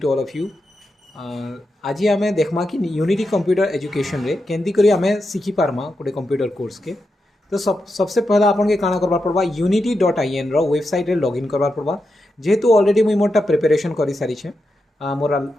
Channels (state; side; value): normal; both; correlation 0.87